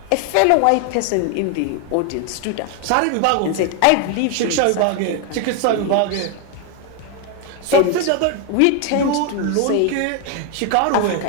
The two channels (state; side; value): different; both; correlation 0.01